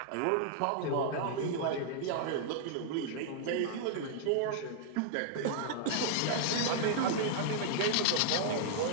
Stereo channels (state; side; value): different; both; correlation -0.01